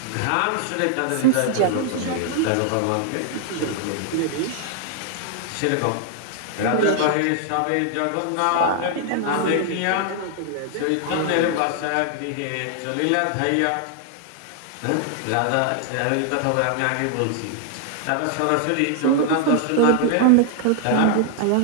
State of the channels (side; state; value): both; different; correlation 0.00